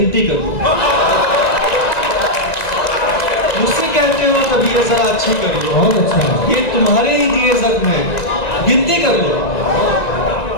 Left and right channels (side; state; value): right; late; 1.9 ms